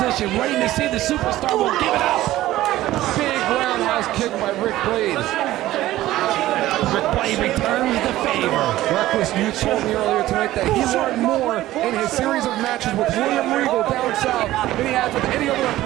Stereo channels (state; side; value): quieter; left; 15.4 dB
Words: waiting to see if the superstar will give it up. Big roundhouse kick by Rick Blade. Rick Blade returns the favor. Reckless Youth told me earlier tonight that he learned more in his series of matches with William Regal down south than he has with any other